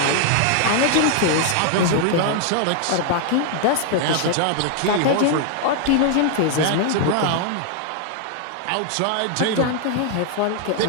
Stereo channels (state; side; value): different; both; correlation 0.00